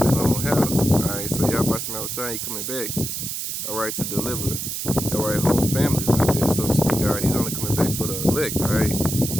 his own house. Alright, so Yahweh Shema Shai coming back, alright, to deliver, alright, whole families like this, so to speak. Alright, he's only coming back for the elect, alright.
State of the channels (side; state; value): right; noise; hiss, 4 dB below the sound